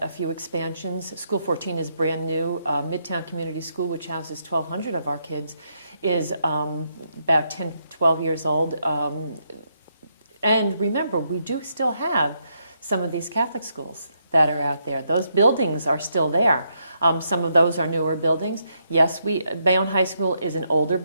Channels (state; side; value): inverted; both; correlation -0.78